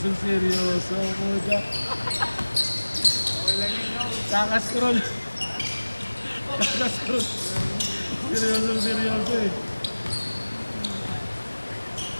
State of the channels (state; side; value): inverted; both; correlation -1.00